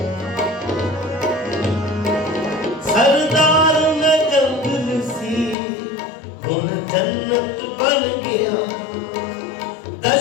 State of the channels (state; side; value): drops out; right; at 5.6 s